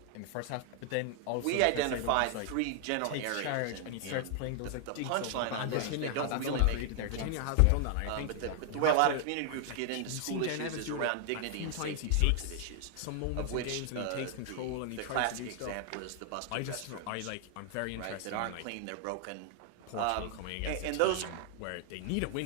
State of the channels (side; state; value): both; different; correlation 0.00